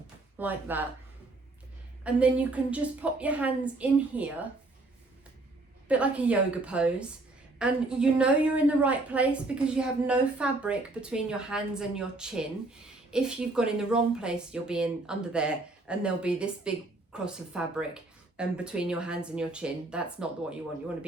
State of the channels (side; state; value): left; quieter; 3.0 dB